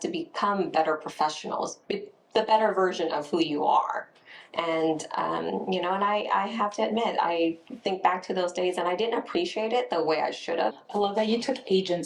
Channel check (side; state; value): both; identical; correlation 1.00